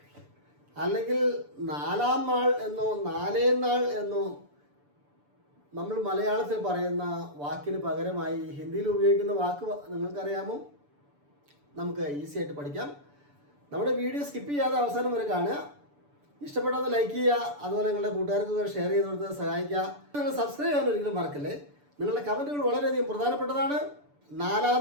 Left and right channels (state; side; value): late; left; 6.9 ms